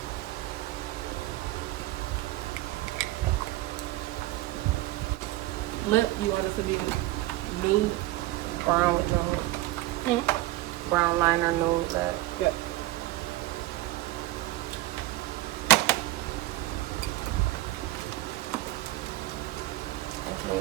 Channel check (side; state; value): left; quieter; 17.2 dB